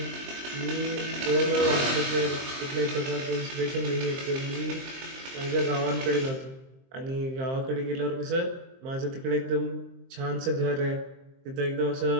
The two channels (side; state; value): left; late; 23 ms